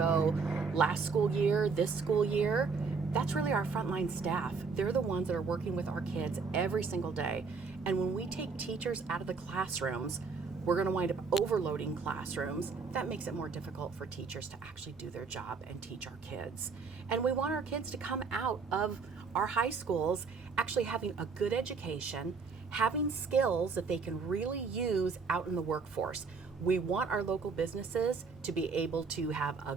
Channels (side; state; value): left; quieter; 4.9 dB